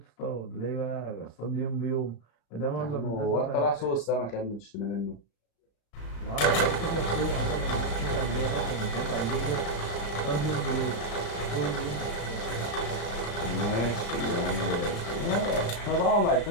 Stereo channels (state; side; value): late; right; 35 ms